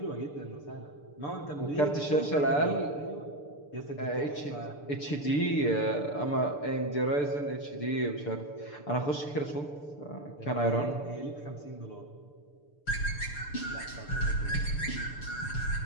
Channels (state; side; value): late; right; 6.8 ms